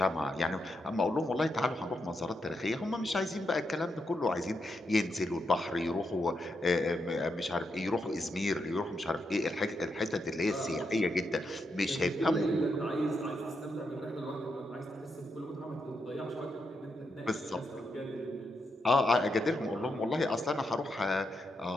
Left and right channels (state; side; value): normal; both; correlation 0.83